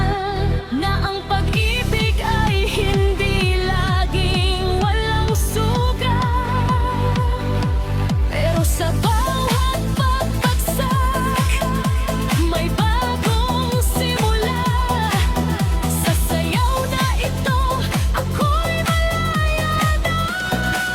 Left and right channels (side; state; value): both; identical; correlation 1.00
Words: na ang pag-ibig ay hindi laging walang sugat. Pero sa bawat pagbagsak, may bagong simula. Sa sayaw na ito, ako'y malaya na.